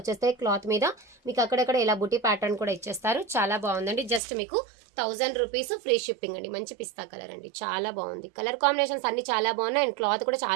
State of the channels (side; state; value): left; drops out; at 4.2 s